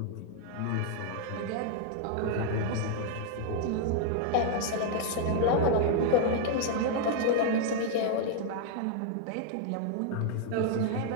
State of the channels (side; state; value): both; different; correlation 0.00